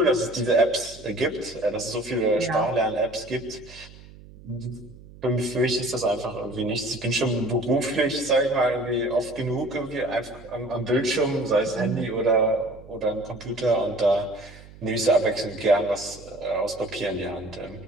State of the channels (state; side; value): noise; right; hum, 20 dB below the sound